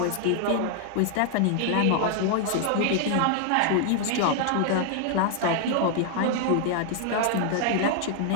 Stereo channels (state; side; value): different; both; correlation 0.00